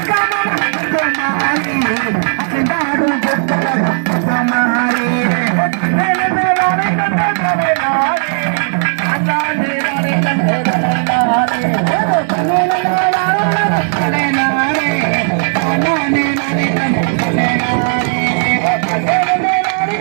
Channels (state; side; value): silent; left; digital silence